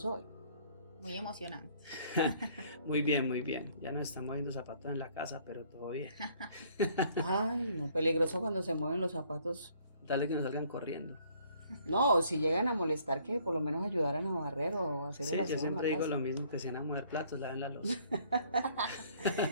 hoy? Muy emocionante. Muy bien. Ya nos están moviendo zapatos en la casa, pero todo bien. Ay, no, peligroso cuando se mueven los zapatos. Dale que nos salgan corriendo. No, si llegan a molestar, que por lo menos ayudaran a barrer o a hacer el aseo. Sí, yo siempre digo lo mismo, que si van a mover platos, laven la loza.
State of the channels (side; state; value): both; inverted; correlation -0.61